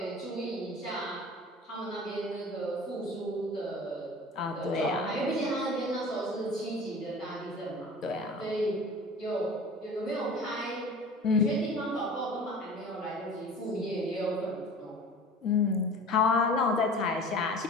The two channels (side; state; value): both; normal; correlation 0.41